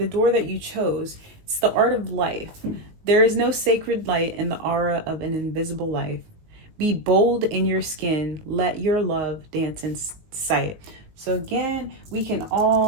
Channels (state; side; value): late; left; 19 ms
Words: door that you chose, it's the art of life. There is no sacred light in the aura of an invisible life. Be bold in your skin. Let your love dance in sight. So again, we can